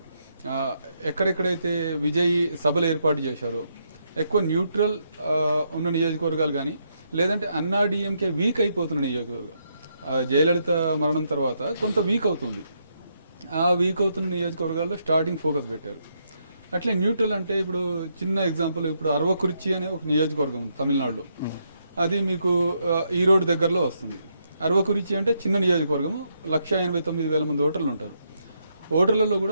ఎక్కడెక్కడైతే విజయ్ సభలు ఏర్పాటు చేశారో ఎక్కువ న్యూట్రల్ ఉన్న నియోజకవర్గాలు కానీ, లేదంటే అన్నా డిఎంకే వీక్ అయిపోతున్న నియోజకవర్గాలు. జయలలిత మరణం తర్వాత కొంత వీక్ అవుతుంది, ఆ వీక్ అవుతున్న నియోజకవర్గాల్లో స్టార్టింగ్ ఫోకస్ పెట్టారు. అట్లే న్యూట్రల్ అంటే ఇప్పుడు చిన్న ఎగ్జాంపుల్, ఇప్పుడు అరవకురిచి అనే ఒక నియోజకవర్గం ఉంది తమిళనాడులో. అది మీకు ఈరోడ్ దగ్గరలో వస్తుంది. అరవకురిచి అంటే చిన్న నియోజకవర్గము, 1,89,000 మంది ఓటర్లు ఉంటారు. ఓటర్లలో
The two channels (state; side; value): inverted; both; correlation -0.77